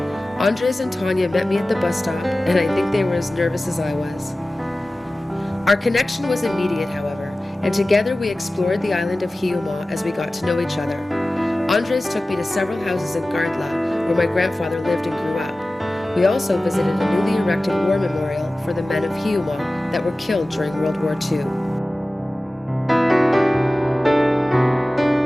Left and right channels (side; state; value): both; normal; correlation 0.97